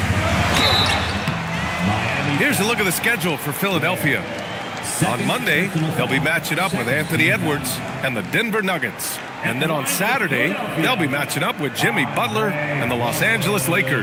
Here's a look at the schedule for Philadelphia. On Monday, they'll be matching up with Anthony Edwards and the Denver Nuggets. And then on Saturday, they'll be matching up with Jimmy Butler and the Los Angeles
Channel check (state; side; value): identical; both; correlation 1.00